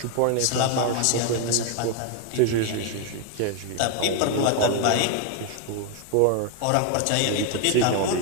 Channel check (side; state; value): both; different; correlation 0.01